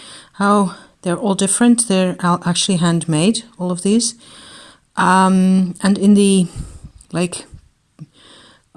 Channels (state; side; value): identical; both; correlation 1.00